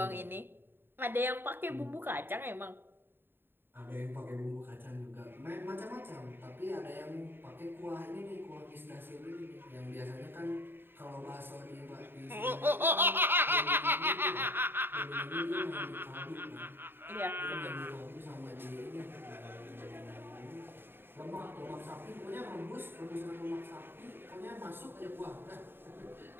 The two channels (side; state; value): left; late; 0.10 ms